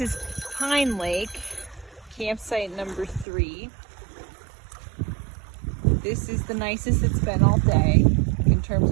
is Pine Lake, campsite number 3. This is the nicest it's been all day in terms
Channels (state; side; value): drops out; left; at 3.2 s